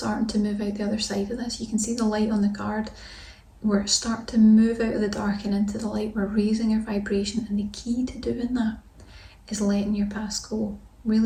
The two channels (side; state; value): both; identical; correlation 1.00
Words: to move out the other side of this. You can see the light on the card. We're starting to move out of the dark and into the light. We're raising our vibration, and the key to doing that is letting your past go,